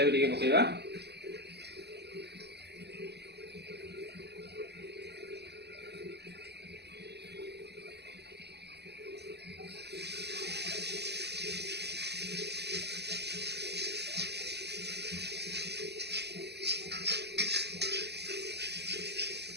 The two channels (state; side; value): late; left; 0.49 ms